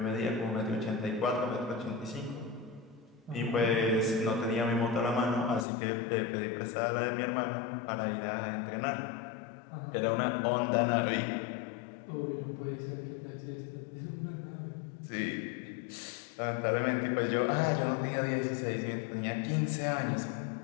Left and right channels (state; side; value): drops out; right; at 5.7 s